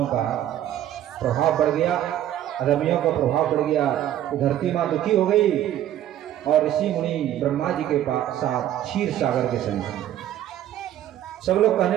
का प्रभाव बढ़ गया, अधर्मियों का प्रभाव बढ़ गया, तो धरती माँ दुखी हो गई और ऋषि मुनि ब्रह्मा जी के साथ क्षीर सागर के संग सब लोग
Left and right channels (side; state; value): left; quieter; 12.0 dB